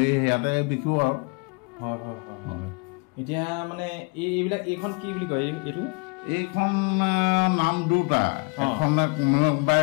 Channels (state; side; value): quieter; right; 31.2 dB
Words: ইয়াতে বিকো আৰু। হয় হয় হয়। এতিয়া মানে এইবিলাক, এইখন কি বুলি কয় এইটো? এইখন নাম দুটা। এখন কোনোবাই